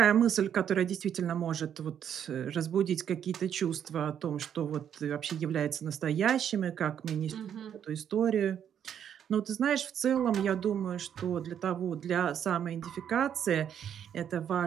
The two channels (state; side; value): quieter; left; 9.0 dB